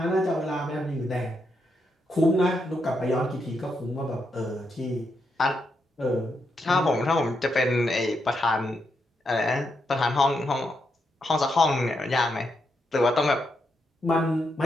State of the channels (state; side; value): normal; both; correlation 0.82